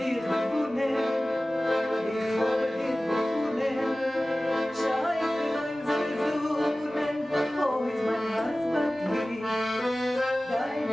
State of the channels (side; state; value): both; normal; correlation 0.97